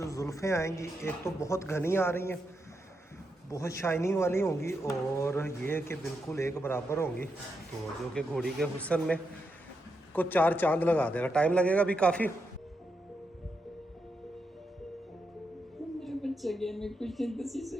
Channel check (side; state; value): both; normal; correlation 0.84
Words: जुल्फ़ें आएंगी एक तो बहुत घनी आ रही हैं बहुत शाइनिंग वाली होंगी और ये कि बिल्कुल एक बराबर होंगी, तो जो कि घोड़ी के हुस्न में को 4 चांद लगा देगा। टाइम लगेगा अभी काफ़ी। मेरा बच्चा गया, मैं कुछ नहीं 10